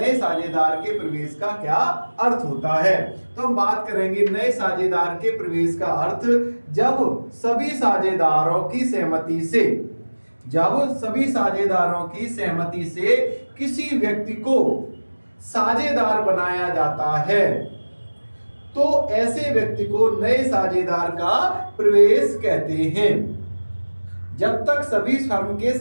साझेदार के प्रवेश का क्या अर्थ होता है। तो हम बात करेंगे नए साझेदार के प्रवेश का अर्थ जब सभी साझेदारों की सहमति से किसी व्यक्ति को साझेदार बनाया जाता है, तो ऐसे व्यक्ति को नए साझेदार का प्रवेश कहते हैं। जब तक सभी फर्म के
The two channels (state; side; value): inverted; both; correlation -1.00